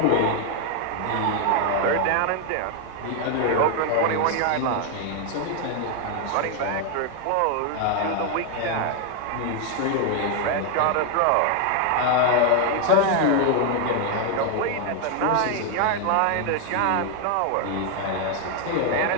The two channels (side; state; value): both; different; correlation 0.00